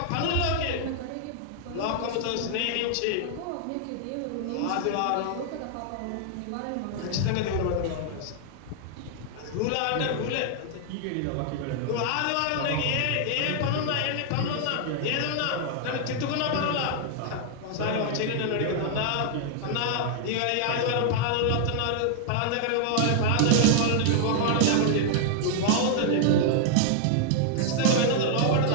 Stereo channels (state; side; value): different; both; correlation 0.00